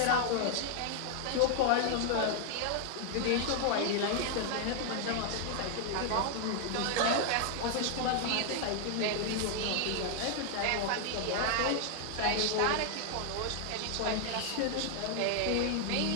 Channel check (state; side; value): different; both; correlation 0.00